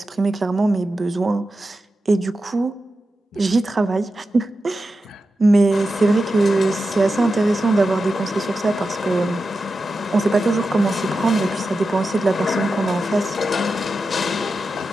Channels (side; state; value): both; normal; correlation 0.91